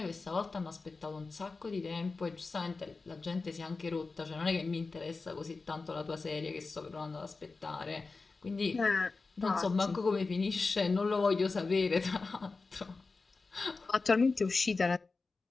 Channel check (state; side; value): quieter; right; 4.0 dB